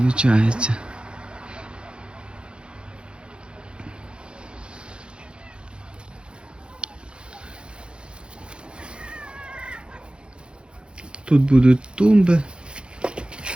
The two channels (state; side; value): late; left; 0.054 ms